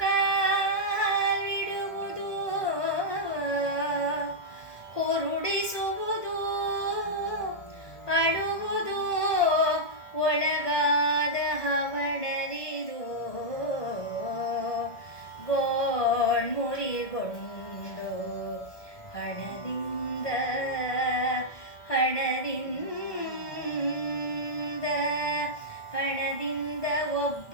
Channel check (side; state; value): right; late; 1.2 ms